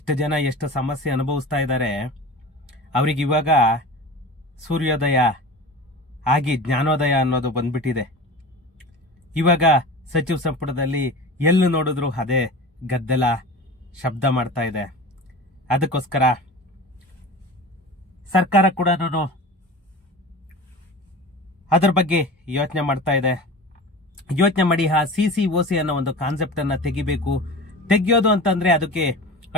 ಜನ ಎಷ್ಟು ಸಮಸ್ಯೆ ಅನುಭವಿಸ್ತಾ ಇದ್ದಾರೆ. ಅವ್ರಿಗೆ ಇವಾಗ ಸೂರ್ಯೋದಯ ಆಗಿ ಜ್ಞಾನೋದಯ ಅನ್ನೋದು ಬಂದ್ಬಿಟ್ಟಿದೆ. ಇವಾಗ ಸಚಿವ ಸಂಪುಟದಲ್ಲಿ ಎಲ್ಲಿ ನೋಡಿದ್ರು ಅದೇ ಗದ್ದಲ ಶಬ್ದ ಮಾಡ್ತಾ ಇದೆ. ಅದಕ್ಕೋಸ್ಕರ ಸರ್ಕಾರ ಕೂಡ ಅದರ ಬಗ್ಗೆ ಯೋಚನೆ ಮಾಡ್ತಾ ಇದೆ. ಯೋಚನೆ ಮಾಡಿ ಆ CCOC ಅನ್ನೋ ಒಂದು ಕಾನ್ಸೆಪ್ಟ್ ಅನ್ನ ತೆಗಿಬೇಕು. ತೆಗಿಯೋದು ಅಂತಂದ್ರೆ ಅದಕ್ಕೆ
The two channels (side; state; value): both; normal; correlation 0.33